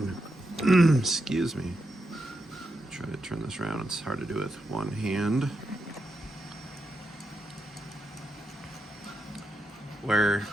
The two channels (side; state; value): both; normal; correlation 0.85